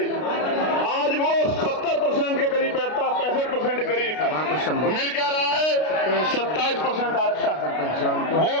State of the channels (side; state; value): right; late; 32 ms